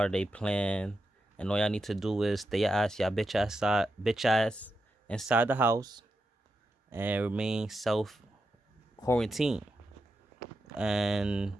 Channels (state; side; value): normal; both; correlation 0.87